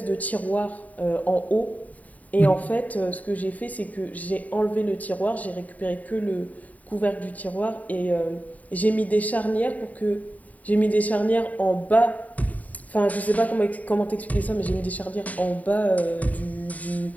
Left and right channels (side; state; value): right; late; 0.072 ms